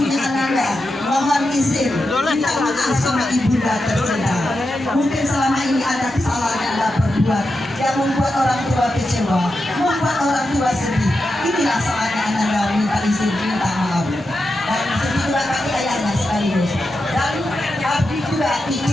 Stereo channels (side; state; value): both; normal; correlation 0.88